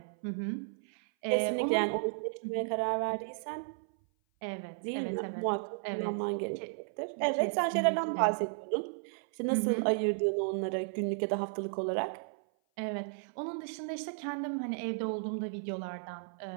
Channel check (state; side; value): silent; left; 55 dB below the other